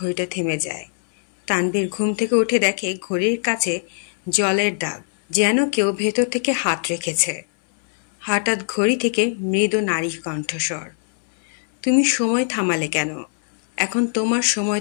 থেমে যায়। তানভীর ঘুম থেকে উঠে দেখে ঘড়ির কাছে জলের দাগ, যেন কেউ ভেতর থেকে হাত রেখেছে। হঠাৎ ঘড়ি থেকে মৃদু নারী কণ্ঠস্বর, তুমি সময় থামালে কেন? এখন তোমার সময়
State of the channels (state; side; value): silent; right; 65 dB below the other